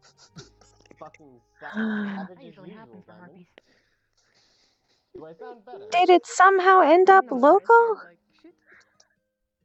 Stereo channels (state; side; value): identical; both; correlation 1.00